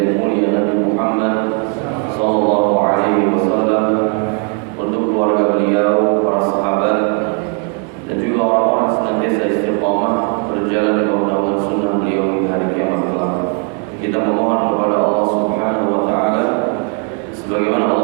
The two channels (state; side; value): quieter; left; 38.2 dB